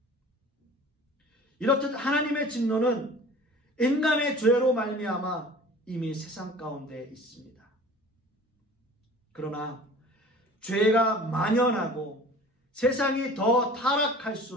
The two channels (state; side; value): normal; both; correlation 0.44